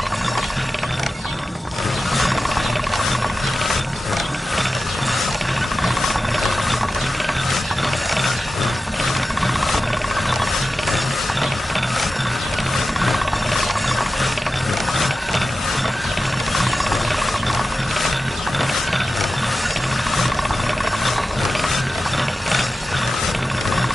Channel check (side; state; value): both; normal; correlation 0.93